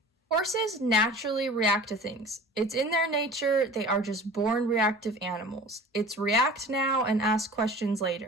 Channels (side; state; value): both; normal; correlation 0.41